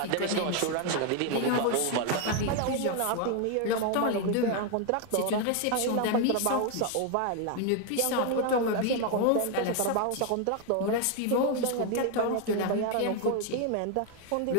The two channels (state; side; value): different; both; correlation 0.00